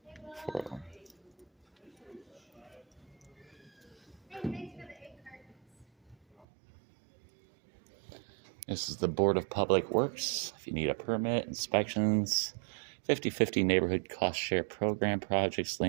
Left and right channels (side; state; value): left; drops out; at 6.5 s